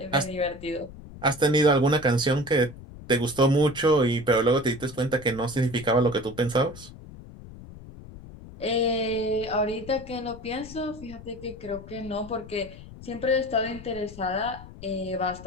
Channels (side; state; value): left; noise; rumble, 16 dB below the sound